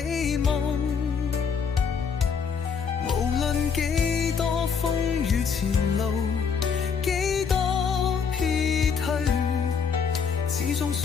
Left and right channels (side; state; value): right; quieter; 6.3 dB